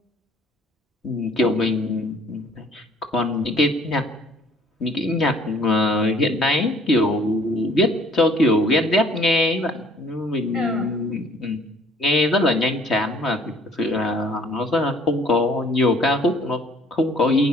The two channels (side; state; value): both; normal; correlation 0.58